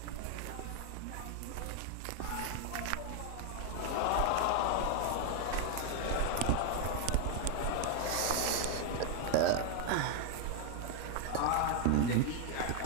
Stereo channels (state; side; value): different; both; correlation 0.00